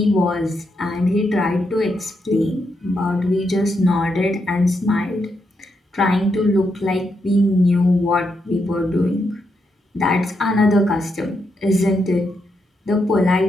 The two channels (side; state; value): both; normal; correlation 0.81